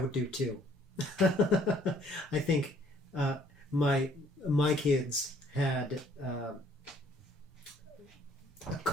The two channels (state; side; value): normal; both; correlation 0.62